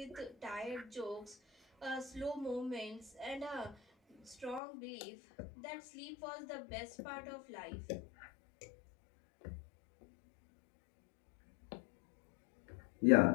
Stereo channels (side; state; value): right; drops out; at 4.6 s